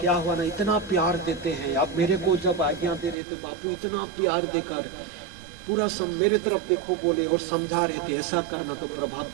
क्या हुआ ना, इतना प्यार देते हैं। अब मेरे को जब आज्ञा दे रहे थे बापू, इतना प्यार देकर पूरा मेरे तरफ देखो बोले, और समझा रहे थे ऐसा करना तो प्रभाव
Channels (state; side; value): drops out; left; at 3.2 s